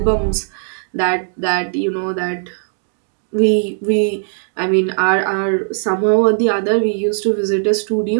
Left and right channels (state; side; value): silent; left; digital silence